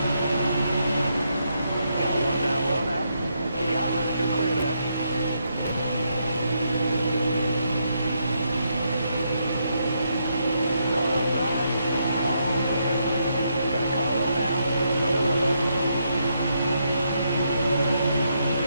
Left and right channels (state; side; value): inverted; both; correlation -0.78